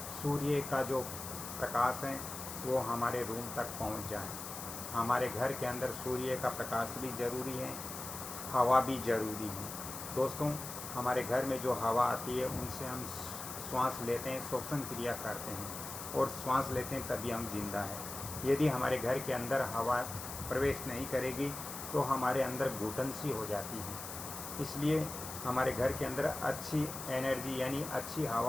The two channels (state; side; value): noise; left; hiss, 8 dB below the sound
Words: सूर्य का जो प्रकाश है वो हमारे रूम तक पहुंच जाए। हमारे घर के अंदर सूर्य का प्रकाश भी ज़रूरी है, हवा भी ज़रूरी है। दोस्तों, हमारे घर में जो हवा आती है उनसे हम श्वास लेते हैं, श्वसन क्रिया करते हैं और श्वास लेते हैं तभी हम जिंदा हैं। यदि हमारे घर के अंदर हवा प्रवेश नहीं करेगी तो हमारे अंदर घुटन सी हो जाती है। इसलिए हमारे घर के अंदर अच्छी एनर्जी यानी अच्छी